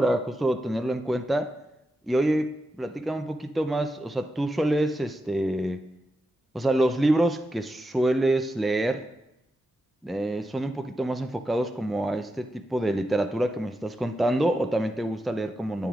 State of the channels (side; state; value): both; normal; correlation 0.88